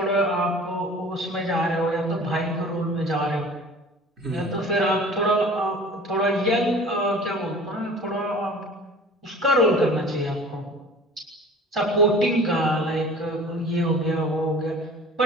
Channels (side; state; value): both; normal; correlation 0.44